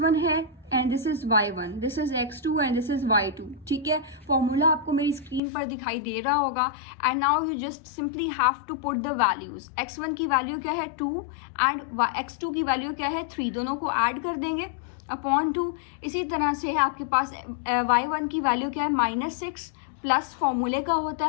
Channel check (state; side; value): drops out; right; at 5.4 s